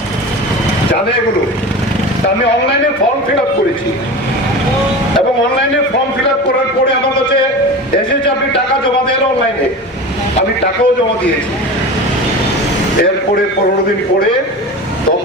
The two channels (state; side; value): normal; both; correlation 0.31